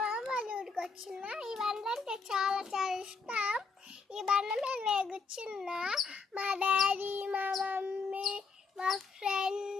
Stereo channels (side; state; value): right; quieter; 4.6 dB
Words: వాళ్ళ ఊరికి వచ్చిన. ఈ బండ్లు అంటే చాలా చాలా ఇష్టం. ఈ బండి మీద నేను కూర్చున్నా. మా డాడీ, మా మమ్మీ, మా